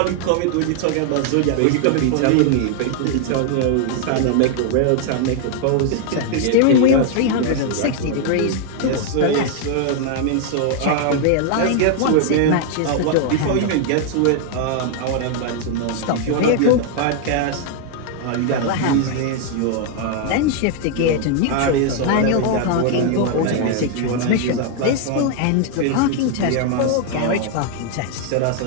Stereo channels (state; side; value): different; both; correlation 0.00